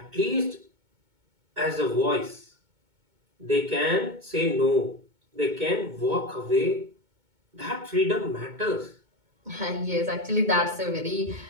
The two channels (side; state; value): left; late; 2.2 ms